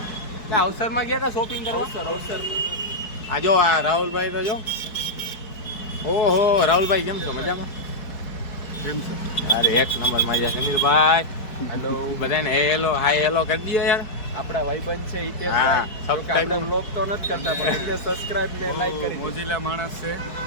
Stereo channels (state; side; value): late; right; 4.6 ms